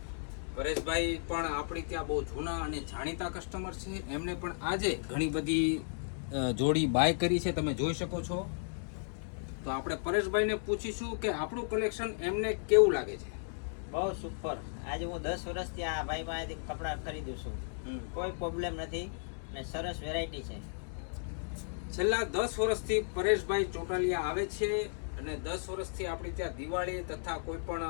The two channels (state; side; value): silent; right; digital silence